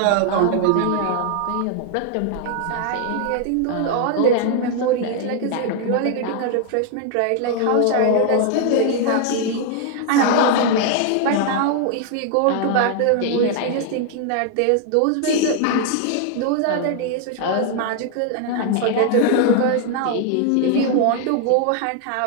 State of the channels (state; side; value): different; both; correlation 0.00